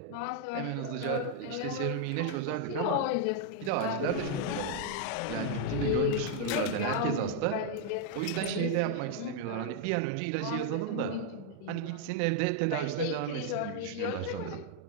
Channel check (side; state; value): both; different; correlation 0.00